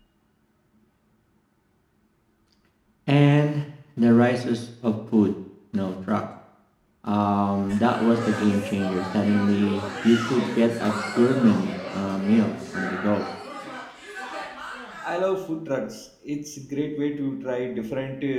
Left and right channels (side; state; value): both; identical; correlation 1.00